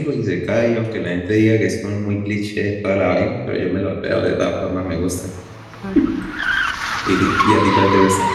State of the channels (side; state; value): both; identical; correlation 1.00